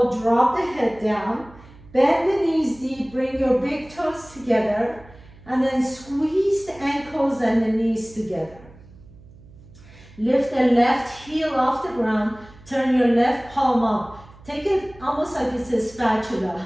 Drop the head down. Bend the knees deep. Bring your big toes together. And then squeeze the ankles and the knees together. Lift the left heel off the ground. Turn your left palm up. Take it almost like it's a spatula.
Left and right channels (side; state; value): right; noise; hum, 22 dB below the sound